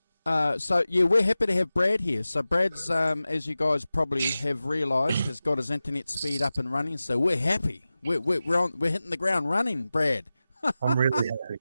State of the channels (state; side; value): inverted; both; correlation -0.95